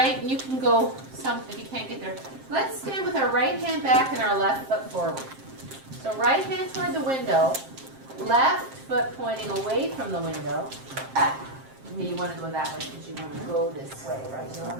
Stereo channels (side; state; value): left; late; 7.6 ms